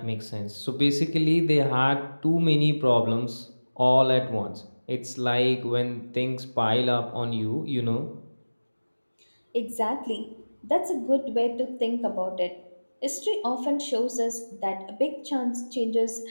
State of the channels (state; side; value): inverted; both; correlation -1.00